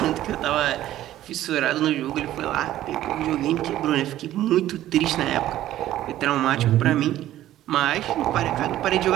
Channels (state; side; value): quieter; left; 13.5 dB